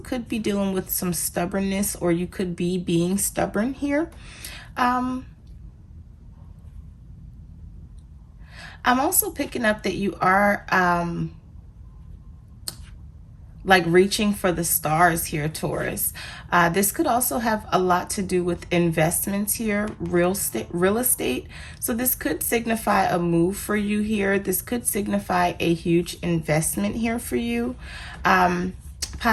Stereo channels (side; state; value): both; identical; correlation 1.00